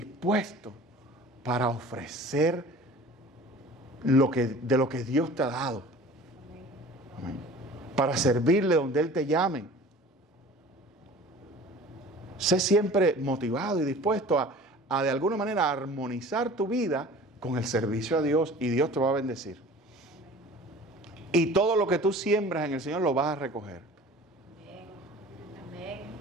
para ofrecer de lo que Dios te ha dado. Amén. Para servirle donde Él te llame. Sé siempre motivado y dispuesto a de alguna manera armonizar tu vida con el servicio a Dios, y Dios te va a bendecir. Y todo lo que tú siembras en el Señor lo vas a recoger. Amén.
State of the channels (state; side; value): normal; both; correlation 0.44